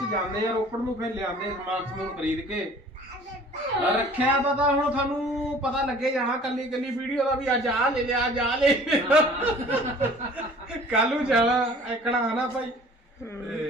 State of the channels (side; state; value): both; normal; correlation 0.49